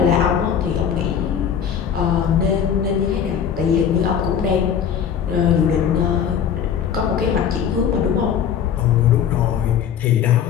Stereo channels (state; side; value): quieter; right; 8.1 dB